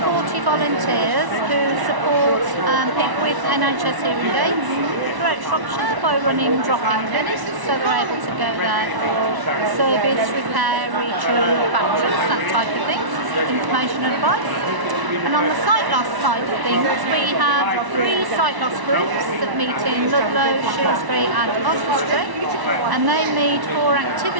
40 volunteers who support people with NHS hearing aids throughout Shropshire by running drop-in clinics, so they're able to go there for service, repair, retune, batteries, that type of thing, information and advice. And on the sight loss side of things, we have 3 sight loss groups that meet in Ludlow, Shrewsbury and Oswestry, and they meet for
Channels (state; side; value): late; left; 1.1 ms